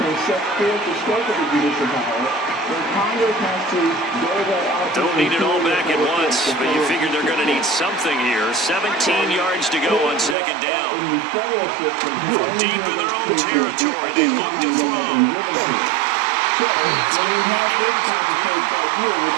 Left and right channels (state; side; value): drops out; left; at 10.4 s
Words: Don't need it all back at once, but you figure they're going to need something here. 17 yards to go on 2nd down. From deep in their own territory, they look to throw. That's going to be incomplete.